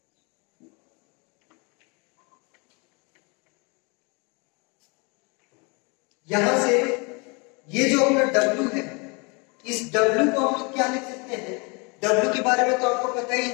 यहां से ये जो अपना W है, इस W को हम लोग क्या लिख सकते हैं? W के बारे में तो आपको पता ही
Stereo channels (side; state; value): right; quieter; 30.6 dB